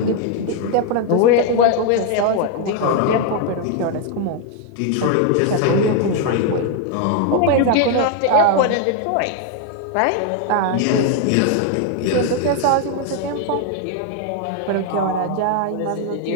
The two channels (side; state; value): both; different; correlation 0.01